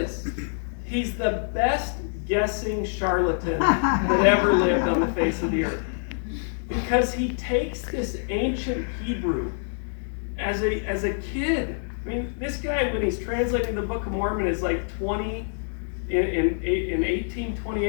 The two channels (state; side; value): silent; right; digital silence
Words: he's the best guessing charlatan that ever lived on the face of the earth. Because he takes this ancient Hebrew as a kid. I mean, this guy, when he's translating the Book of Mormon, is like 20, in